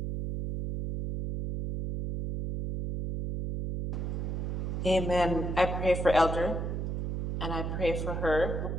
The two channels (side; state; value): right; noise; hum, 2 dB below the sound